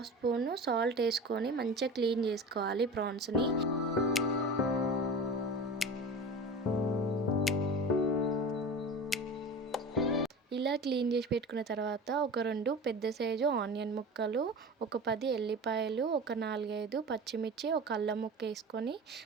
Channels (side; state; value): both; normal; correlation 0.33